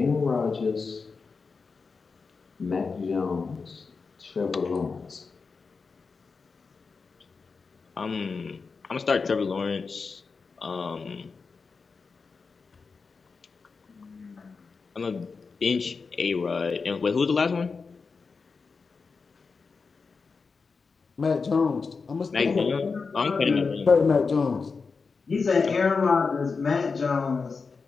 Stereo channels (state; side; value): quieter; right; 4.8 dB